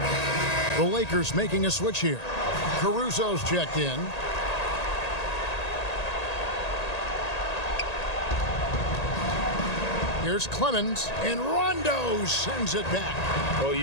The Lakers making a switch here. Caruso's checked in. Here's Clemens, and Rondo sends it back. Well,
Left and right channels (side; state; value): right; late; 1.8 ms